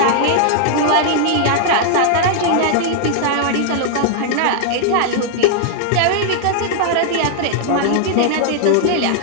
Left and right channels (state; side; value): different; both; correlation 0.00